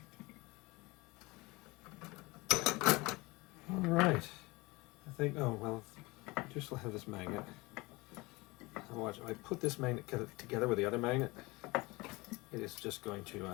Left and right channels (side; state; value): right; quieter; 23.6 dB